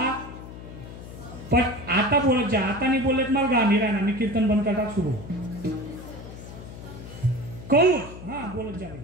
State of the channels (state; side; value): noise; left; hum, 13 dB below the sound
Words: पण आता बोलत जा, आता नाही बोलत मला गाणी राहणार, मी कीर्तन बंद करता सुरू. कंस, हा बोलत जा.